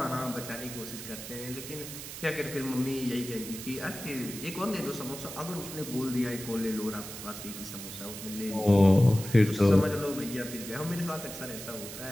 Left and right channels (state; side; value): noise; right; hiss, 10 dB below the sound